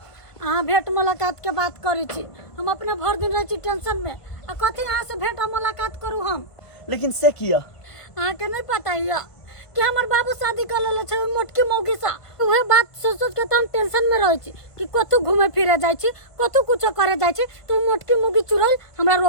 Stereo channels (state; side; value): late; right; 1.5 ms